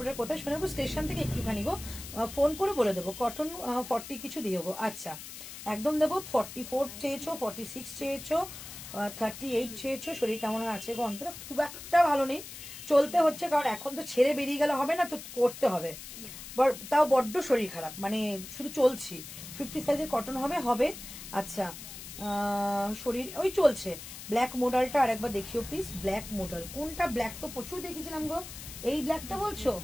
কোথায়? সোনারপুর স্টেশন থেকে একটুখানি গো, ফোন করে বলে দেবো। কটন 40 কিছু দিও গো। আচ্ছা, একদম দেবো। 44 চেয়েছো, 46 চেয়েছো, 38 চেয়েছো। শরীর কেমন আছে গো? অন্তরা খুব একটা ভালো নেই, চলতে হচ্ছে, কারণ এখন তো ছেড়ে বেরিয়ে গেলে হবে না, তো করতে হবে। তাও বড্ড শরীর খারাপ, মানে শুধু চলছি। 50 সাইজের কটন হবে। আচ্ছা, শরীর ওই চলছে। ব্ল্যাক মডেলটা আর একবার দেখিও প্লিজ। ব্ল্যাক মডেল কোনটা? ব্ল্যাক তো প্রচুর দেখেছিলাম গো। এই ব্ল্যাকটা বলছো?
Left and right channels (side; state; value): left; noise; hiss, 12 dB below the sound